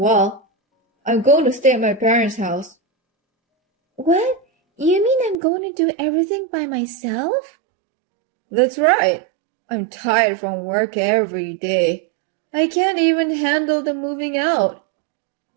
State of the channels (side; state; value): left; drops out; at 5.4 s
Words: I'm going to stay at my parents' house. What? You mean I'm going to do everything by myself? That's right. I'm tired from work every day. I can't even handle the moving out.